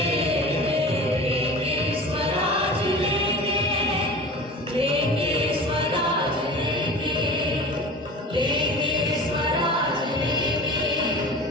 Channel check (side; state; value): both; normal; correlation 0.35